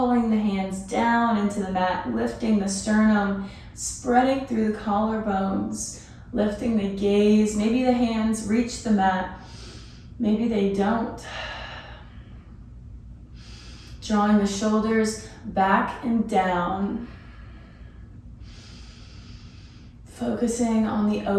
the hands down into the mat, lifting the sternum, spreading through the collarbones, lifting the gaze. Maybe the hands reach the mat, maybe they don't. Drawing the shoulders back and down. Focusing on the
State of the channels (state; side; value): identical; both; correlation 1.00